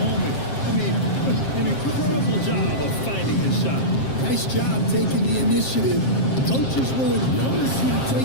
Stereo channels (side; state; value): right; late; 7.5 ms